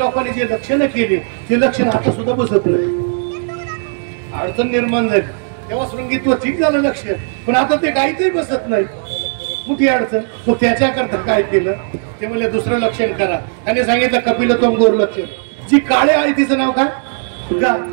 जे लक्षणं केली ते लक्षण आता सुद्धा बसत नाही. अडचण निर्माण झाली तेव्हा शृंगीत्व ठीक झालं लक्ष, पण आता ते गायीचंही बसत नाही, मोठी अडचण. तो त्याच्याकरता काय केलं, ते म्हणजे दुसरं लक्षण करा. त्याने सांगितलं कपिलत्वम गोर लक्षण. जी काळे आहे तिचं नाव काय, गा.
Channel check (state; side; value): silent; left; digital silence